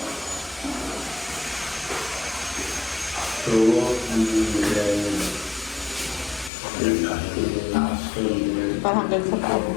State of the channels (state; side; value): drops out; right; at 6.5 s